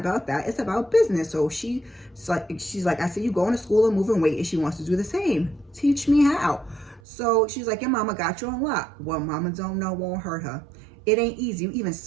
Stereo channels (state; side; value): drops out; left; at 7.0 s